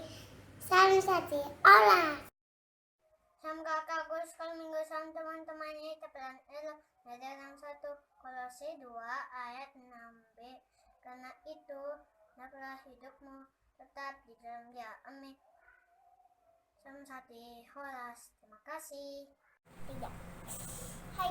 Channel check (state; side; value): identical; both; correlation 1.00